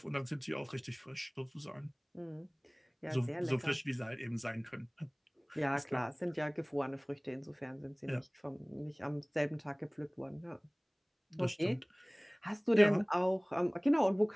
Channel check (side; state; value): both; identical; correlation 1.00